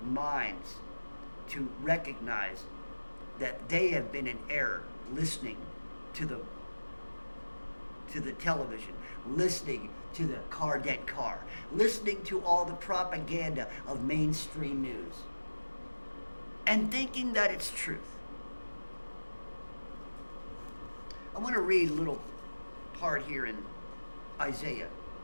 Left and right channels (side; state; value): both; inverted; correlation -1.00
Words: minds to recognize that they have been in error listening to the television, listening to the dead car, listening to all the propaganda of mainstream news, and thinking that it's truth. I want to read a little part here in Isaiah